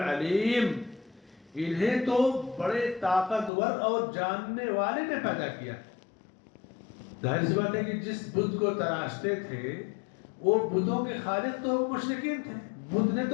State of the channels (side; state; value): right; drops out; at 3.5 s